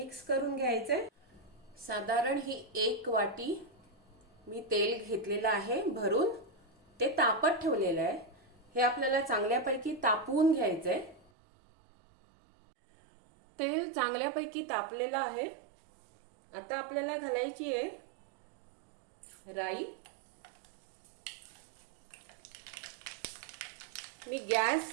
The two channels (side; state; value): left; drops out; at 11.3 s